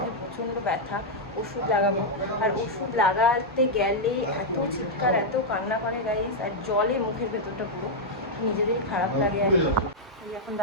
প্রচণ্ড ব্যথা, ওষুধ লাগাবো। আর ওষুধ লাগাতে গেলে এত চিৎকার, এত কান্না করে গাইস, আর জলে মুখের ভেতরটা পুরো নিজেদেরই খারাপ লাগে। আর এই এখন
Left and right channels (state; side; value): normal; both; correlation -0.04